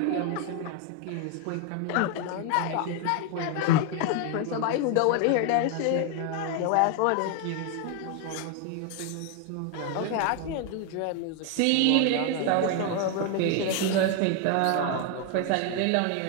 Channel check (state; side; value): different; both; correlation 0.01